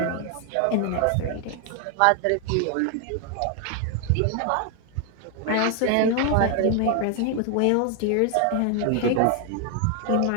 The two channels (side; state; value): both; different; correlation 0.00